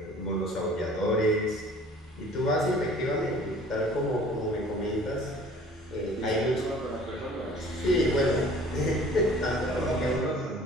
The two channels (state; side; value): normal; both; correlation 0.50